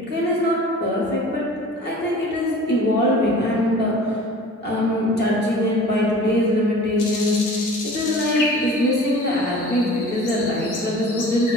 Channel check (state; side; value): normal; both; correlation 0.43